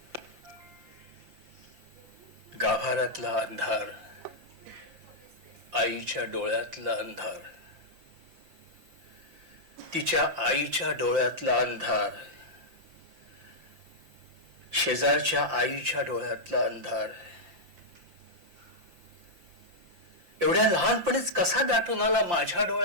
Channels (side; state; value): left; late; 5.8 ms